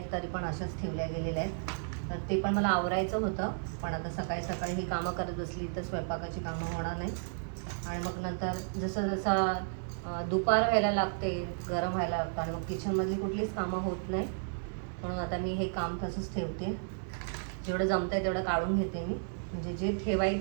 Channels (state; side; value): silent; left; digital silence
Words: तरी पण अशाच ठेवल्या गेलेल्या आहेत. तर ते पण मला आवरायचं होतं, पण आता सकाळी सकाळी ही कामं करत बसली तर स्वयंपाकाची कामं होणार नाही. आणि मग नंतर जसं जसं दुपार व्हायला लागते, गरम व्हायला लागतं आणि मग किचनमधली कुठलीच कामं होत नाही. म्हणून आता मी हे काम तसंच ठेवते. जेवढं जमतं आहे तेवढं काढून घेते मी. म्हणजे जे